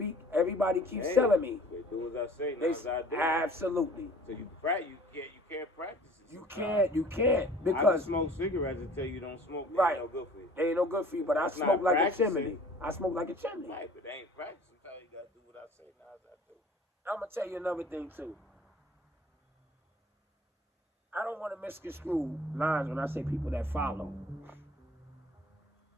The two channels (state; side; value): normal; both; correlation 0.49